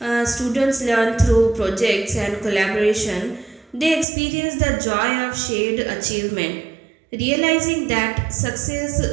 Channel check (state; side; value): drops out; left; at 4.0 s